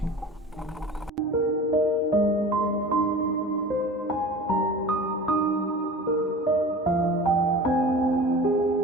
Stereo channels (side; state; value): both; normal; correlation 0.37